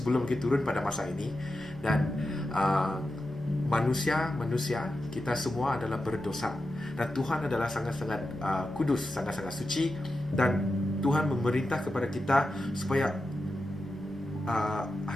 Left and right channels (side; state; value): both; normal; correlation 0.90